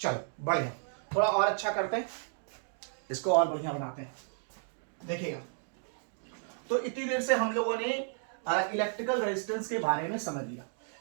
बढ़िया, थोड़ा और अच्छा करते हैं, इसको और बढ़िया बनाते हैं। देखिएगा, तो इतनी देर से हम लोगों ने इलेक्ट्रिकल रेजिस्टेंस के बारे में समझ लिया।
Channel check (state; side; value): silent; left; digital silence